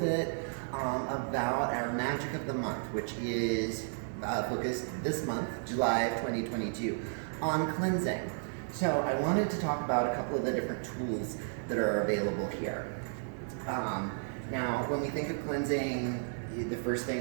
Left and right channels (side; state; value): left; silent; 56 dB below the other